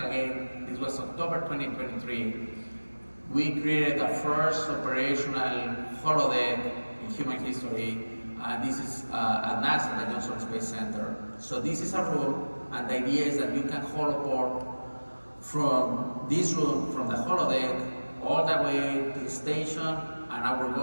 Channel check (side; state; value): both; inverted; correlation -1.00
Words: again, this was October 2023, we created the first operational holodeck in human history. This is at NASA, the Johnson Space Center. So this is a room, and the idea is that you can holoport from this room, from the holodeck, all the way to the station, and our